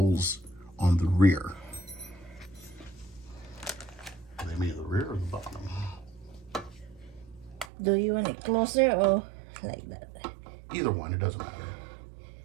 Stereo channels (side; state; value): left; drops out; at 7.7 s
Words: on the rear. They mean the rear or the bottom? Do you want it closer or like that? Either one, it doesn't matter.